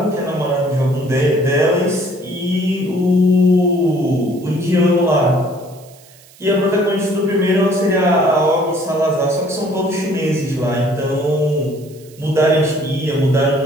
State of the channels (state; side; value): noise; right; hiss, 25 dB below the sound